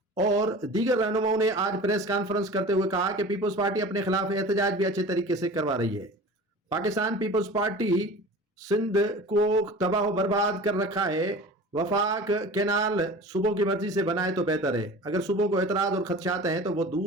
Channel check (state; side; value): normal; both; correlation 0.38